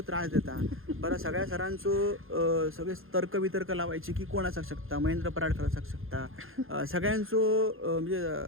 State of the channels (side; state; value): left; late; 0.60 ms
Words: त्रास देता. बरं सगळ्या सरांचो सगळे तर्क लावायचे की कोण असाक शकता, महेंद्र पराडकर असाक शकता. सगळ्यांचो म्हणजे